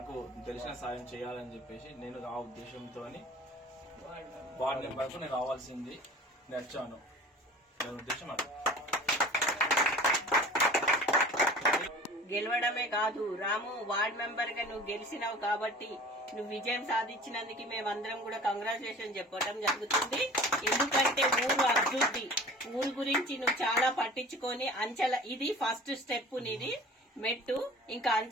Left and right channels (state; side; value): normal; both; correlation 0.42